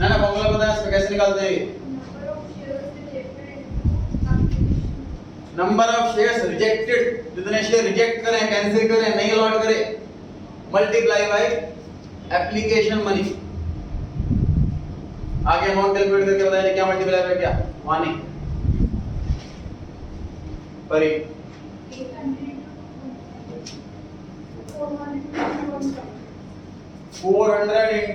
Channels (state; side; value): identical; both; correlation 1.00